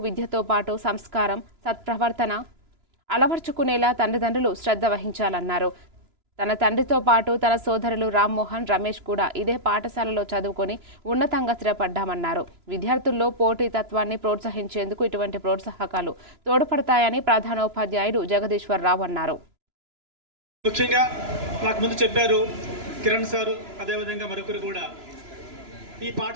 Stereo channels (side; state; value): left; late; 3.0 ms